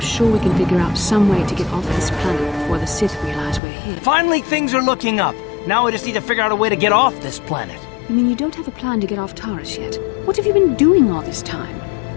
we can figure out some way to get off this planet before the Sith realize we're here. Finally, things are looking up. Now we just need to figure out a way to get off this planet. You mean you don't have a plan to get off Taris yet? What have you been doing all this time?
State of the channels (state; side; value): drops out; right; at 3.6 s